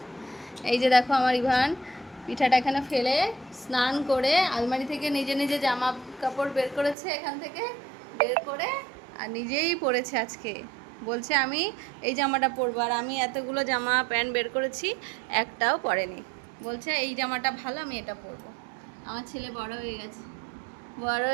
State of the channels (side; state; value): left; drops out; at 7.0 s